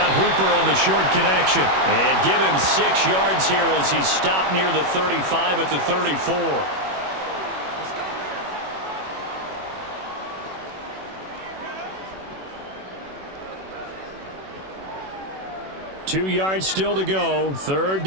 Hooper on the short connection. And give him 6 yards here as he's stopped near the 35 at the 34. Two yards still to go. 3rd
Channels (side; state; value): left; late; 21 ms